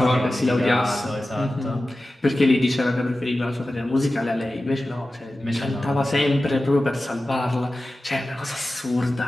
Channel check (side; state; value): both; normal; correlation 0.95